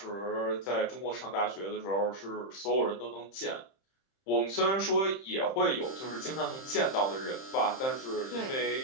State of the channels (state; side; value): late; right; 31 ms